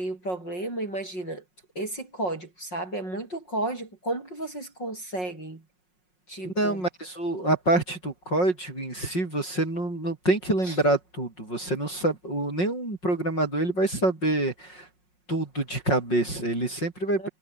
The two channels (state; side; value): late; right; 5.5 ms